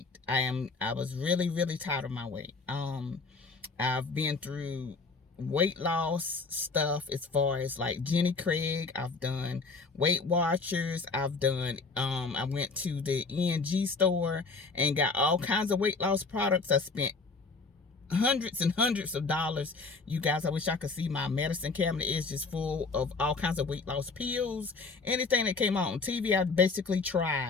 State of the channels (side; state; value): right; quieter; 4.1 dB